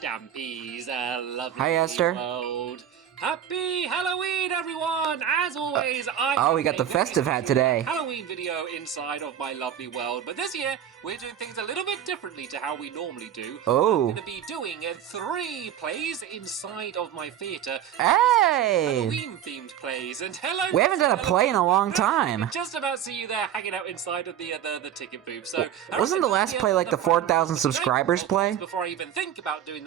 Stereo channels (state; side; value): quieter; left; 10.0 dB